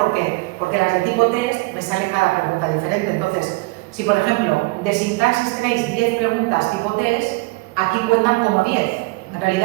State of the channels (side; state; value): left; quieter; 24.9 dB